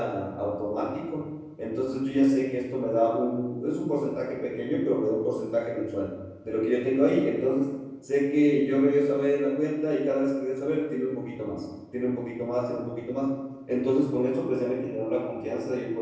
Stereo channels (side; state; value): both; identical; correlation 1.00